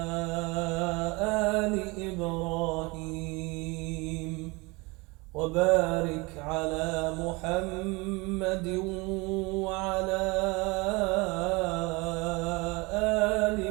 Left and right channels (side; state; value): left; quieter; 25.9 dB